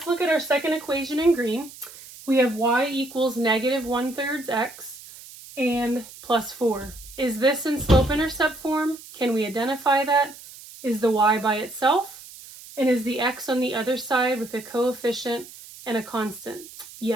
look at our second equation in green. We have y equals negative 1/3 x and plus 4. Is this in slope-intercept form? Can we identify that? Is the y by itself? And is the x on the other side with a coefficient and a constant?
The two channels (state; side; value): noise; right; hiss, 17 dB below the sound